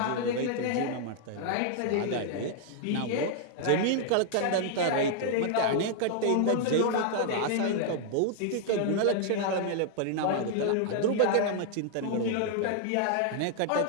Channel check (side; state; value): both; different; correlation -0.01